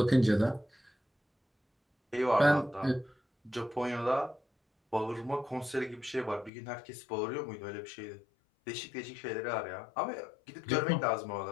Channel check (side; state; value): right; drops out; at 6.5 s